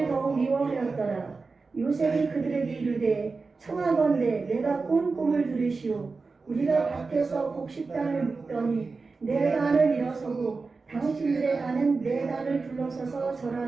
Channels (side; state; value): left; quieter; 4.2 dB